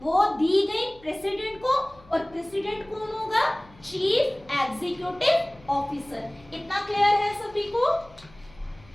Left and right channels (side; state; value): left; noise; hum, 25 dB below the sound